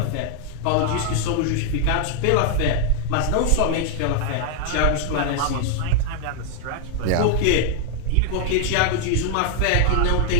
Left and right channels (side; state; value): both; different; correlation 0.00